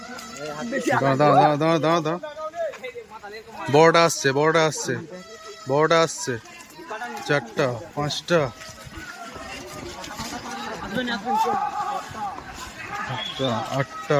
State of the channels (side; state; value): both; identical; correlation 1.00